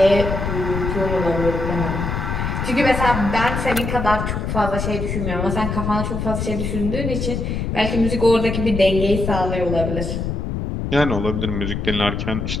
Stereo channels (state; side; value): noise; left; rumble, 3 dB below the sound